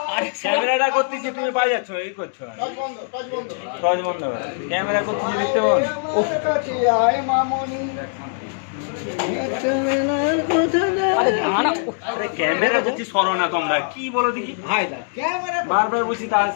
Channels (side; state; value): right; silent; digital silence